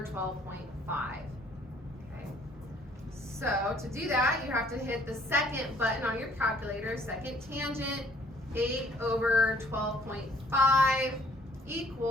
12.5. Okay. So to do that, you have to hit the second button on your calculator, second tangent, 8 over 12.5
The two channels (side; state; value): both; normal; correlation 0.60